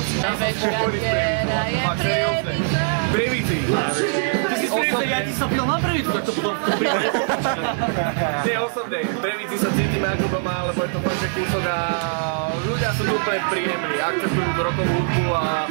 Ja som spokojný s Prievicou, fakt seriózne. V Prievidzi. Ty si osobne, ja ti sa pil na Prievidzu, tak to potom v tom prípade popačka. Nie osobne, v Prievidzi sa cítime ako doma, lebo je to fakt, že kúsok a ľudia sú tu úplne príjemní, akceptujú rokovú hudbu a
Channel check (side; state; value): left; silent; digital silence